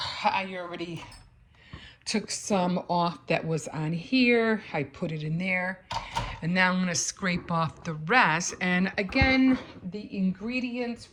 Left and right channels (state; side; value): identical; both; correlation 1.00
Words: I already took some off that was on here. I put it in there. And now I'm gonna scrape off the rest. And again, the ingredients